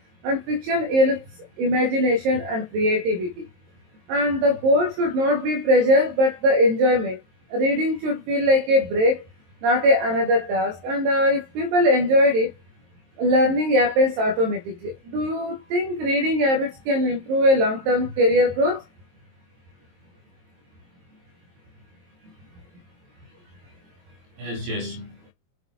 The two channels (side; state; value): left; late; 22 ms